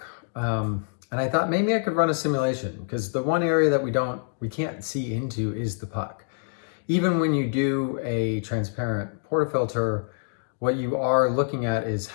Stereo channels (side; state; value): right; silent; digital silence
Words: And I thought maybe I could run a simulation because the one area that we can't see into is the puck. Even when you do a transparent portafilter, what you are looking at is